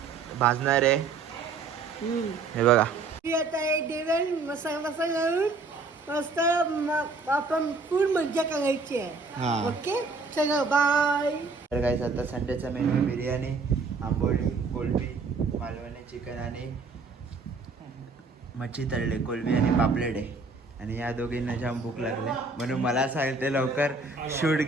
भाजणार आहे. हे बघा आता एक जेवण मसाला घालून मस्त आपण फुल मज्जा करायची आहे. हा. ओके चलो बाय. तर गाईस आता संडेचा मेनू आहे बिर्याणी, आंबोळी, कोलबी, मालवणी चिकन आणि मच्छी तळले, कोलबी आणि पापलेट आहे. आणि या दोघींना जाम भूक लागले म्हणून मला सांगते लवकर शूट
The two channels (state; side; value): quieter; left; 4.1 dB